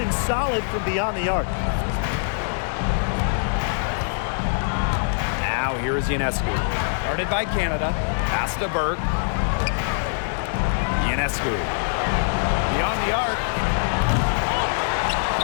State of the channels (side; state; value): right; silent; 60 dB below the other